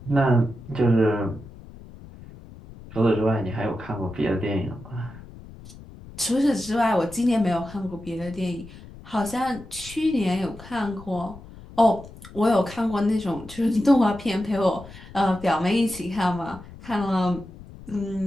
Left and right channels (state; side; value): noise; left; rumble, 17 dB below the sound